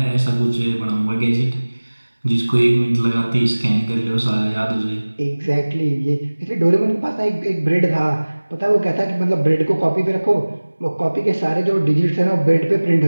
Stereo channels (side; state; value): both; inverted; correlation -1.00